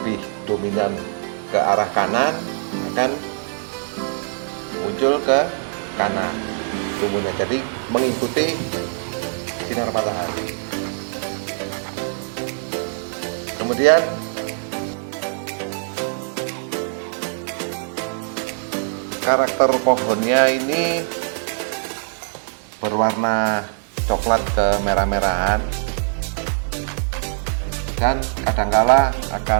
dominan ke arah kanan, akan muncul ke kanan tumbuhnya, jadi mengikuti sinar matahari. Kemudian karakter pohonnya ini berwarna coklat ke merah-merahan, dan kadangkala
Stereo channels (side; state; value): left; silent; digital silence